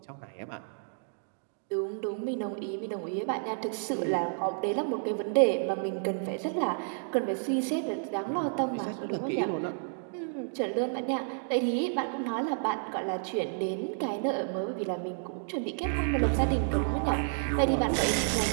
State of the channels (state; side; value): silent; left; digital silence